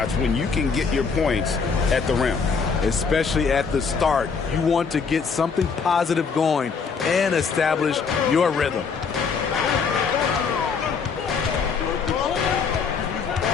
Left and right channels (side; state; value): right; quieter; 5.5 dB